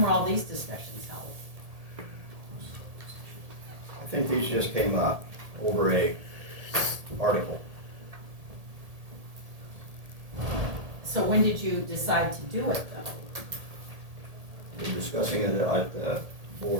were all these discussions held? I think these just came up over a article. So when did you decide to do it though? We're discussing it at the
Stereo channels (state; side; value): late; left; 1.8 ms